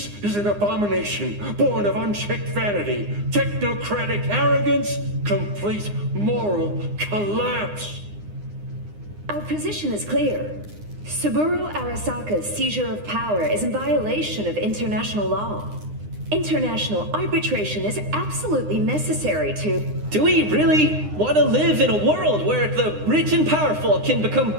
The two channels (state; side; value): late; left; 9.8 ms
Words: is an abomination born of unchecked vanity, technocratic arrogance, complete moral collapse. Our position is clear. Saburo Arasaka's seizure of power is in violation of international law. International arbitration is absolutely necessary to... Do we really want to live in a world where the rich and powerful can become